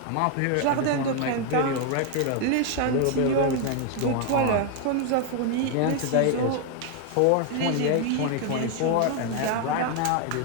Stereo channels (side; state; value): both; different; correlation 0.01